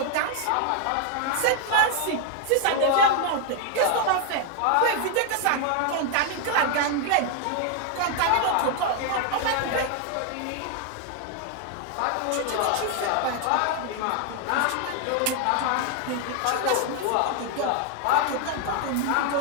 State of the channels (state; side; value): different; both; correlation 0.00